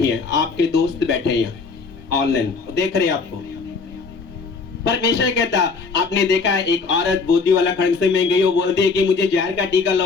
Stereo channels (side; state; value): right; quieter; 4.6 dB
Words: हैं, आपके दोस्त बैठे हैं यहाँ ऑनलाइन देख रहे हैं आपको। परमेश्वर कहता, आपने देखा है एक औरत बोधी वाला खंड से में गई, वो बोलती है कि मुझे जहर का टीका